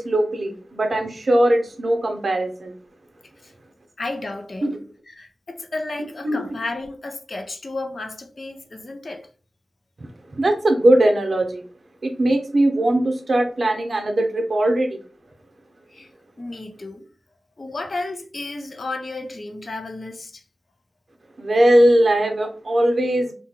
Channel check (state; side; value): normal; both; correlation 0.95